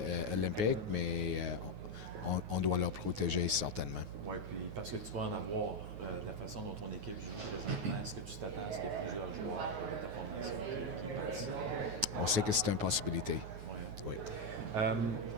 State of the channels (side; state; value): left; late; 9.5 ms